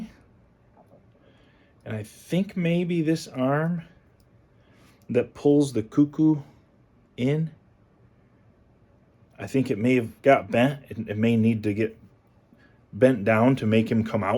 And I think maybe this arm that pulls the cuckoo in, I think it may have got bent. It may need to get bent down to make him come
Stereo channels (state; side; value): identical; both; correlation 1.00